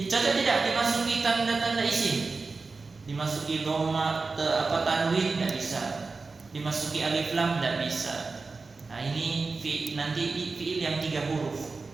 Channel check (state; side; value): quieter; left; 4.1 dB